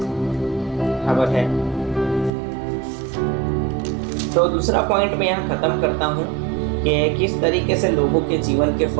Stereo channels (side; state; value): left; drops out; at 2.3 s